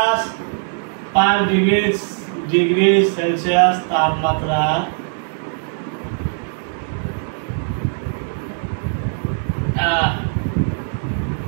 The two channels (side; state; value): left; silent; digital silence